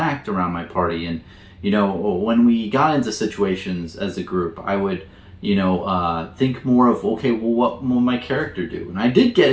around my party. And you know, when we got into situations as a group, I would, you know, think more of, okay, well, what will my character do? And I did get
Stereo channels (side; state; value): both; identical; correlation 1.00